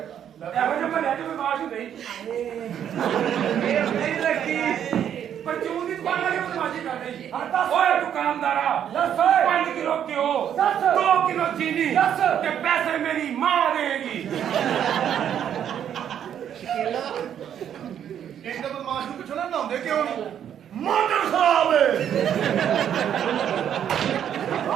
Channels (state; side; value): quieter; left; 9.4 dB